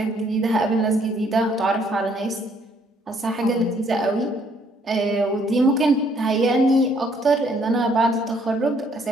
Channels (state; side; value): normal; both; correlation 0.66